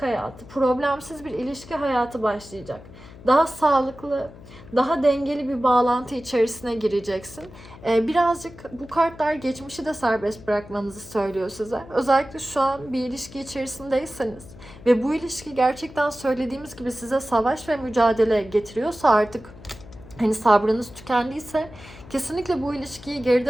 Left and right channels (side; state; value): left; noise; hum, 18 dB below the sound